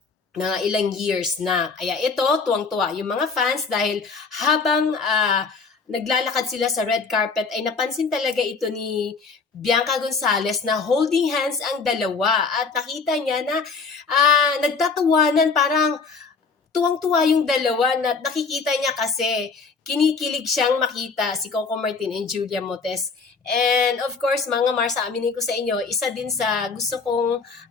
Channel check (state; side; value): quieter; right; 4.8 dB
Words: na ilang years na. Kaya ito, tuwang-tuwa yung mga fans dahil habang naglalakad sila sa red carpet ay napansin talaga ito ni Bianca Gonzalez na holding hands ang dalawa at nakita niya na nagtatawanan, parang tuwang-tuwa yung dalawa na nakikita niya kasi kinikilig siyang makita si Coco Martin and Julia Montes. And of course, mga Mars, aminin ko sa inyo, isa din sa gusto kong